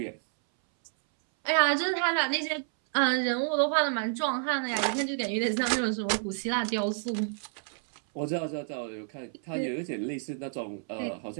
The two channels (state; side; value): silent; left; 58 dB below the other